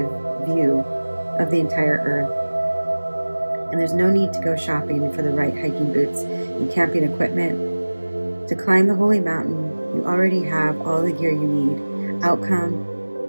view of the entire earth. And there's no need to go shopping for the right hiking boots and camping equipment. To climb the Holy Mountain, you already have all the gear you need.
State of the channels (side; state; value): both; inverted; correlation -1.00